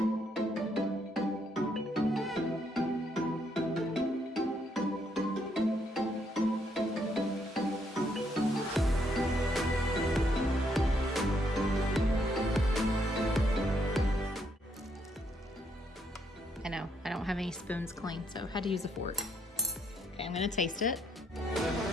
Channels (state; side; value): normal; both; correlation 0.73